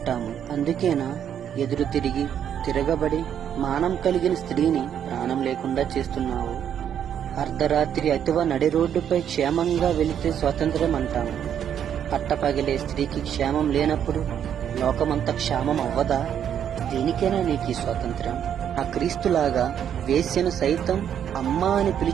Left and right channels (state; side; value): quieter; left; 9.1 dB